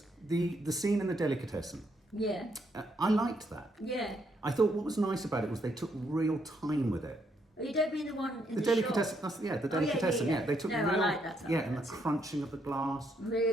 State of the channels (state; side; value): normal; both; correlation 0.75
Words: The scene in the delicatessen. Yeah. I liked that. Yeah. I thought what was nice about it was they took real time with it. Oh, you don't mean the one in the delicatessen. shop? The delicatessen. yeah. They took No, real. I like that. And the crunching of the glass.